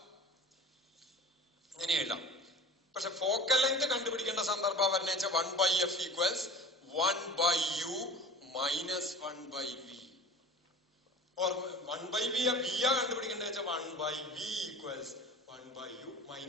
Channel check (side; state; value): both; normal; correlation 0.39